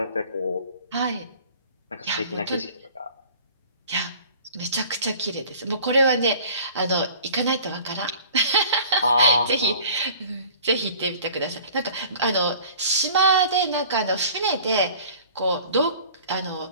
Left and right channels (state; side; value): inverted; both; correlation -0.47